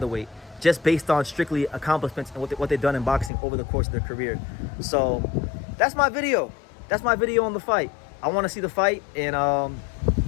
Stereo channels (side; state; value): right; drops out; at 3.3 s